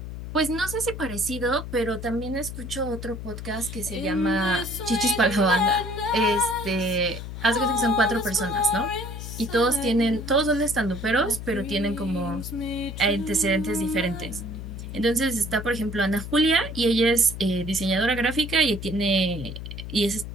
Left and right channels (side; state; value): left; noise; hum, 9 dB below the sound